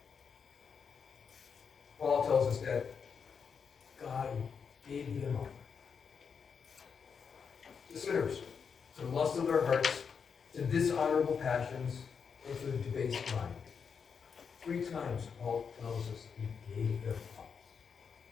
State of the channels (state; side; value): quieter; right; 6.3 dB